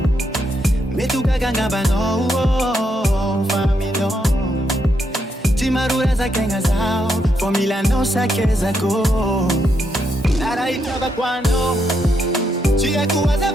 Metu kaganga bano Fami no Timarura za kenga zao Formula no sakeza ko Nara itaba kwano Chia kuwaza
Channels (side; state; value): both; normal; correlation 0.79